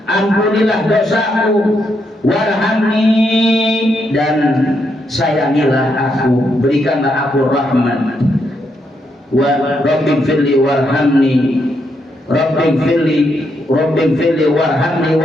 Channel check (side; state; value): both; normal; correlation 0.79